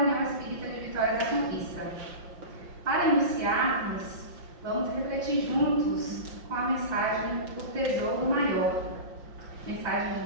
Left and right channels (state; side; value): late; left; 5.7 ms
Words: Espírita de Vitória da Conquista. Para iniciarmos, vamos refletir juntos com a mensagem O Tesouro Maior. Mensagem